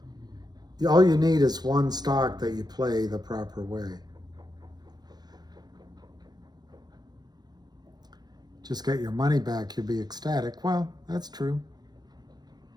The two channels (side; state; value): left; late; 0.19 ms